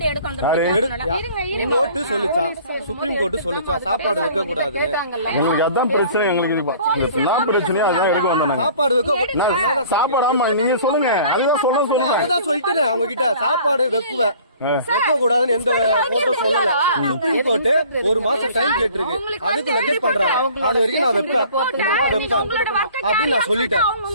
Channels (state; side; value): inverted; both; correlation -0.50